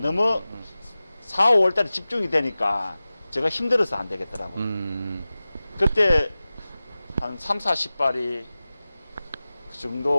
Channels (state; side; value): inverted; both; correlation -0.97